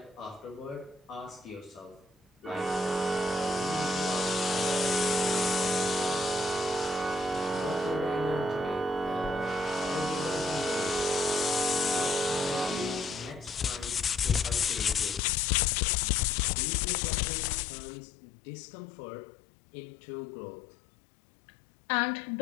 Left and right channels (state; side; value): drops out; right; at 15.2 s